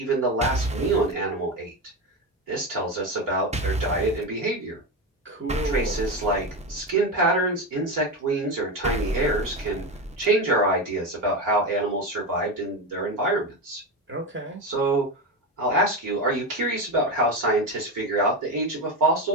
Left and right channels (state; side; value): normal; both; correlation 0.17